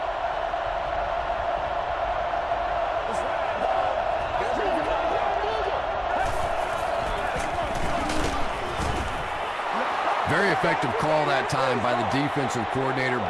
Very effective call that time by the defensive coordinator,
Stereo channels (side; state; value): both; identical; correlation 1.00